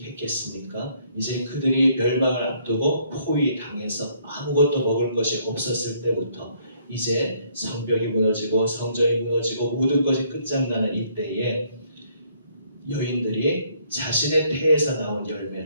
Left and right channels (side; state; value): both; inverted; correlation -0.66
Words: 이제 그들이 멸망을 앞두고 포위당해서 아무것도 먹을 것이 없었을 때부터 이제 성벽이 무너지고 성전이 무너지고 모든 것이 끝장나는 이때에 여인들이 자신의 태에서 나온